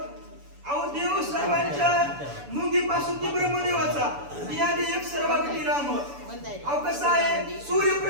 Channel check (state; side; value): late; left; 7.0 ms